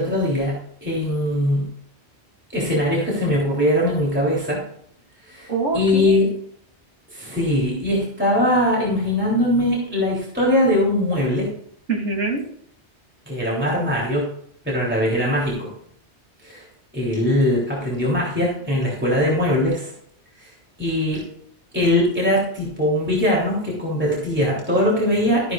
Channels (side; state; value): both; normal; correlation 0.13